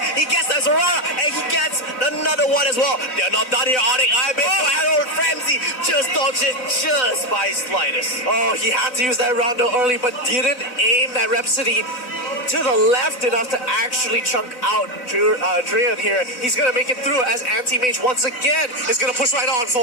He gets the Sorara. And he gets another one as well. They're not done here, Onyx. Abyssal Arrow and Framsy just dodged it just by slightest. Oh, he had to use that rondo early, but didn't aim that Rhapsody to the left enough to actually chunk out Drian here. He's going to make it through as Anti-Mage once again is going to push right on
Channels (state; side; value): late; right; 4.0 ms